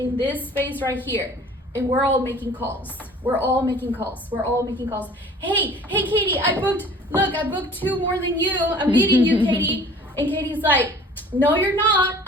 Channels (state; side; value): normal; both; correlation 0.48